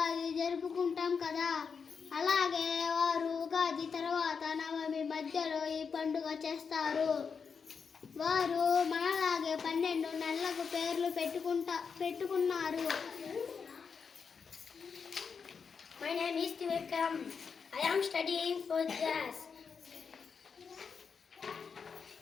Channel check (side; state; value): right; quieter; 5.9 dB